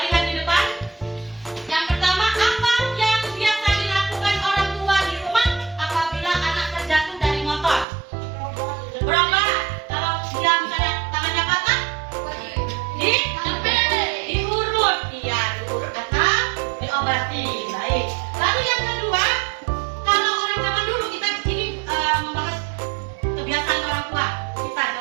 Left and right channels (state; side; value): drops out; left; at 7.9 s